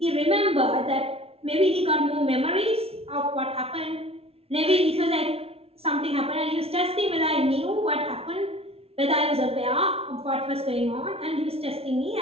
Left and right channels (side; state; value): left; late; 0.29 ms